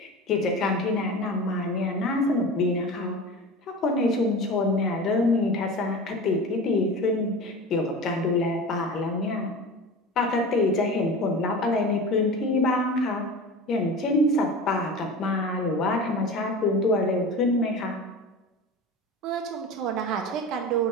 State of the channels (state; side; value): normal; both; correlation 0.32